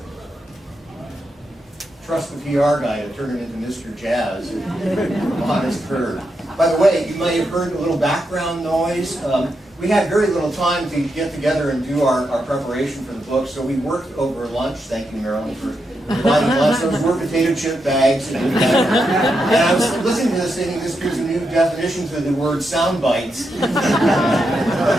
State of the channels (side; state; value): both; normal; correlation 0.84